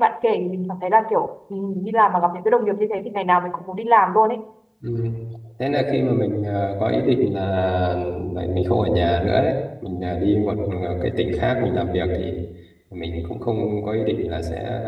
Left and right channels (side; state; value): both; identical; correlation 1.00